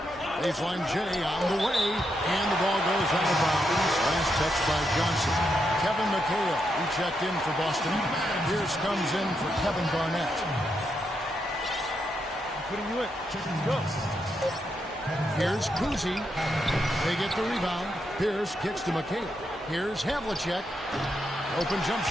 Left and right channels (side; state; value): both; normal; correlation 0.82